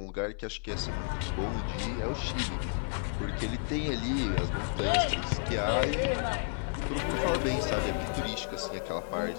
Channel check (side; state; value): right; silent; 57 dB below the other